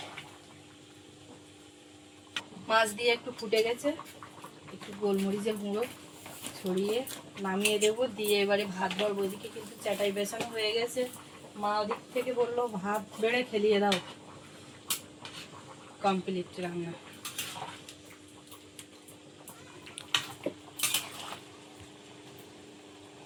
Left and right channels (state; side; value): identical; both; correlation 1.00